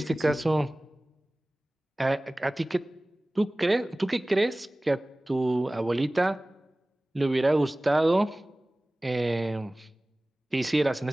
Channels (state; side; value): normal; both; correlation 0.98